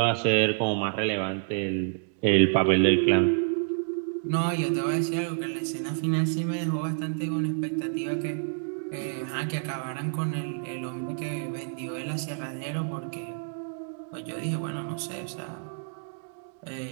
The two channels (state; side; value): silent; left; digital silence